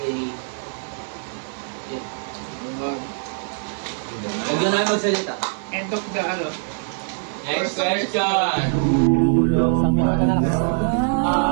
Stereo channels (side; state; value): left; silent; 64 dB below the other